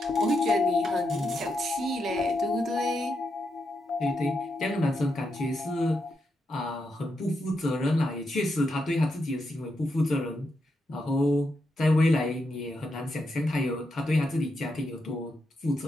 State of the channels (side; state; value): both; normal; correlation 0.83